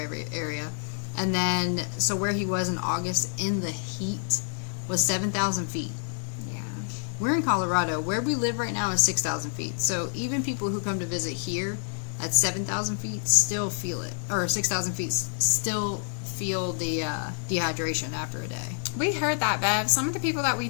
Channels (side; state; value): right; silent; digital silence